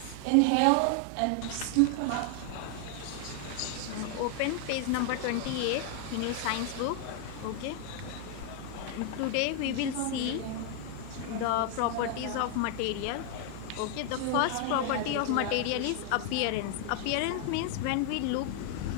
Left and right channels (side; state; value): both; different; correlation 0.00